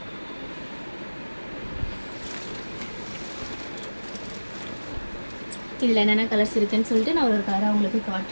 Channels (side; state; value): both; inverted; correlation -1.00